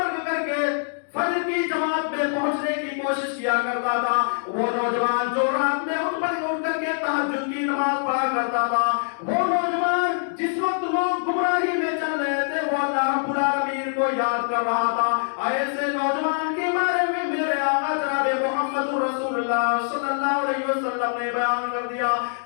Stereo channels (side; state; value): right; silent; digital silence